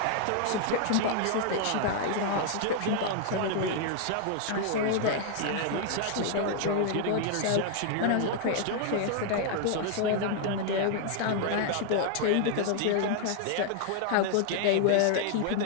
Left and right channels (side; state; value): both; different; correlation 0.00